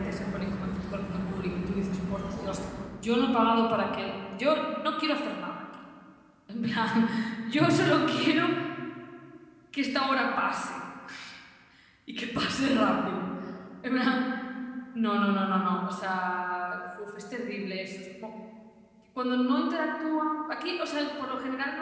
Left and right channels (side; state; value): both; identical; correlation 1.00